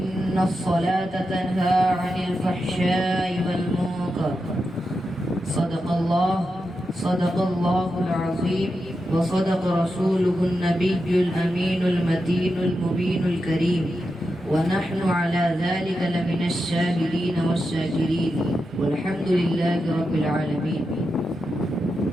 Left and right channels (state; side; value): normal; both; correlation 0.88